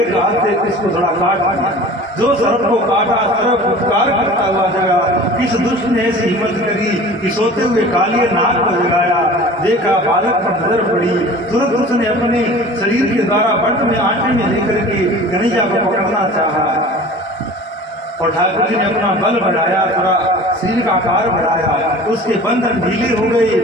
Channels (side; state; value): both; normal; correlation 0.42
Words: हाथ से इसको थोड़ा काट दिया। जो सरफ को काटा सरफ उपकार करता हुआ जगा। किस दुष्ट ने ऐसी हिम्मत करी कि सोते हुए कालिए नाग को जगाया। देखा बालक पर नजर पड़ी, तुरंत उसने अपने शरीर के द्वारा बंट में आटे में लेकर के कन्हैया को पकड़ना चाहा। और ठाकुर जी ने अपना बल बढ़ाया, थोड़ा शरीर का आकार बढ़ाया, उसके बंधन ढीले हो